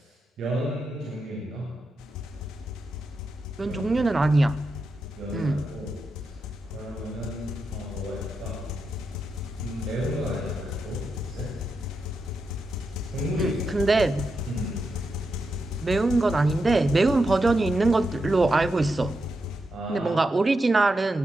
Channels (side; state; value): both; normal; correlation 0.86